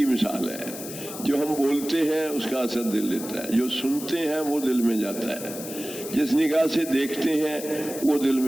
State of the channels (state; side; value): noise; left; hiss, 11 dB below the sound